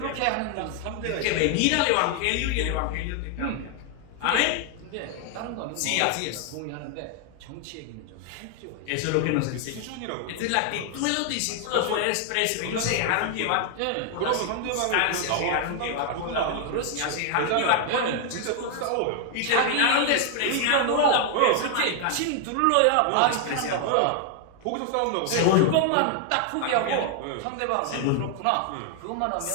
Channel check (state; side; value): different; both; correlation 0.00